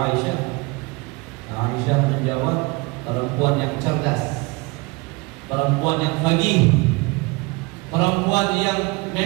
Aisyah menjawab, perempuan yang cerdas, perempuan yang faqih, perempuan yang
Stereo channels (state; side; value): quieter; left; 25.4 dB